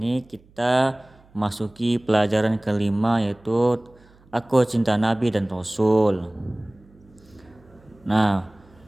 kita memasuki pelajaran kelima, yaitu Aku Cinta Nabi dan Rasul. Nah,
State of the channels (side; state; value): right; noise; hum, 29 dB below the sound